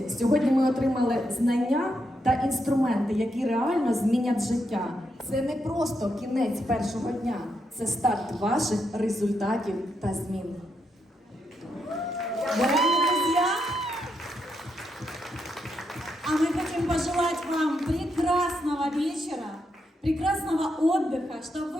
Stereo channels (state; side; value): normal; both; correlation 0.81